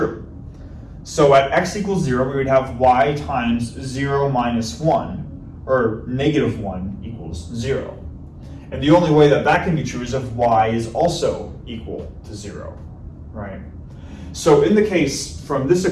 So at x equals 0, we would have y times 0 minus 1, or negative 1 equals 0. And the only way that that can be true is if y is also equal to 0, right? So in the case from this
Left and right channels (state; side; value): identical; both; correlation 1.00